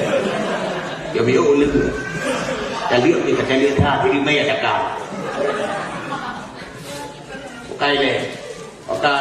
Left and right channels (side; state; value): both; identical; correlation 1.00